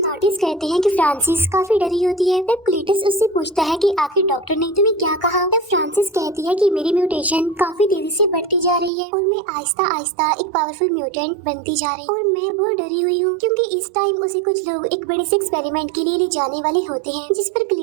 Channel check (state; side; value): drops out; left; at 8.9 s